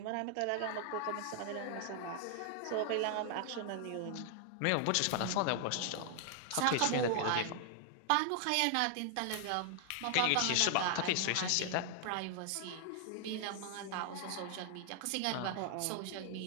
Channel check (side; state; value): both; different; correlation 0.00